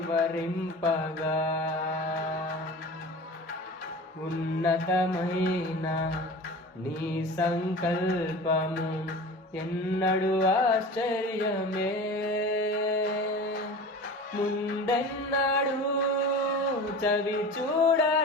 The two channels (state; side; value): normal; both; correlation 0.36